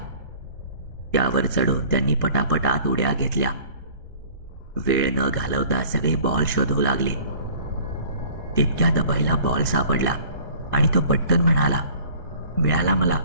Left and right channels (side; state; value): both; inverted; correlation -0.49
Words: त्यावर चढून त्यांनी पटापट आत उड्या घेतल्या. वेळ न घालवता सगळे बॉल शोधू लागले. तितक्यात अभयला बॉल सापडला आणि तो पटकन म्हणाला, मिळाला मला,